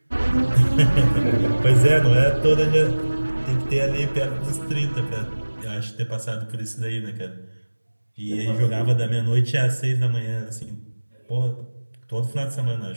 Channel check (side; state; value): both; inverted; correlation -1.00